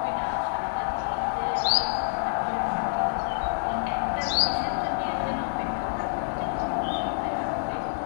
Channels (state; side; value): silent; right; digital silence